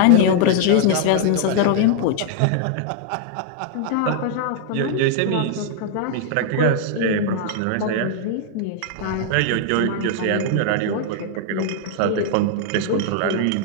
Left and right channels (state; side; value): different; both; correlation 0.00